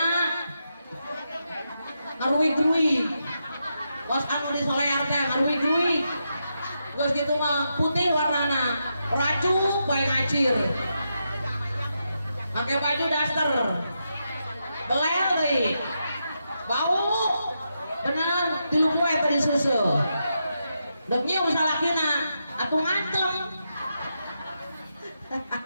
ngaruwi-gruwi bos anu di solear teh ngaruwi-gruwi geus gitu mah putih warnana racu bae ngacir pakai baju daster belel deui bau bener tilu poe tadi susu deuk nyium salakina atuh ngantem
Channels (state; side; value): inverted; both; correlation -0.85